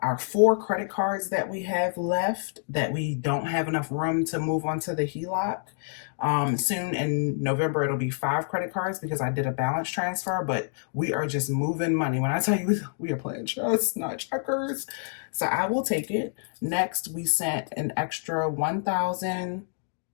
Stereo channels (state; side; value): silent; right; digital silence